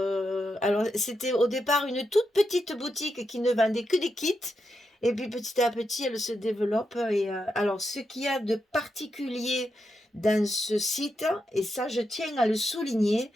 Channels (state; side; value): normal; both; correlation 0.85